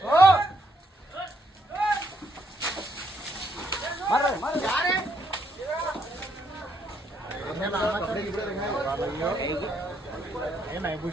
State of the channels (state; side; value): normal; both; correlation 0.74